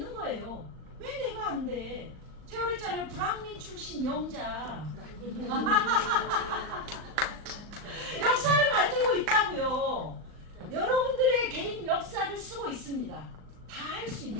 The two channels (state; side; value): late; left; 39 ms